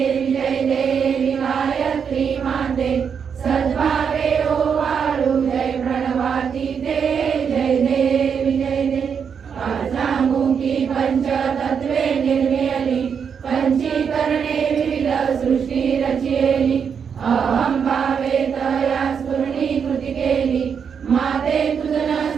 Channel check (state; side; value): quieter; left; 6.9 dB